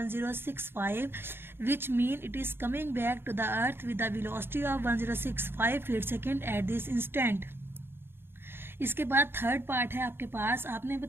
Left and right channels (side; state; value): left; late; 0.11 ms